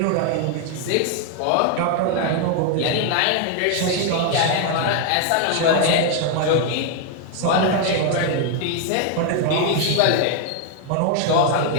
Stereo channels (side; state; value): both; different; correlation 0.00